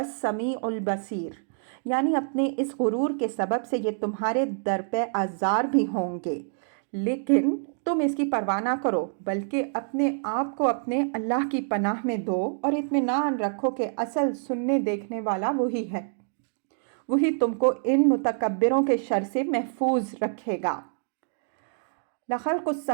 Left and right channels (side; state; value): left; silent; digital silence